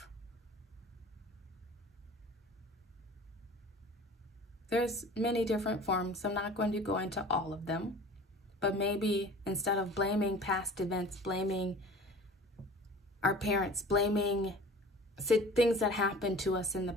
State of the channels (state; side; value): normal; both; correlation 0.43